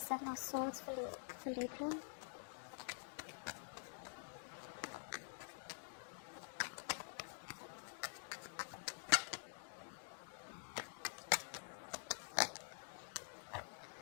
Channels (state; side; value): silent; right; digital silence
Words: of Swords for Libra.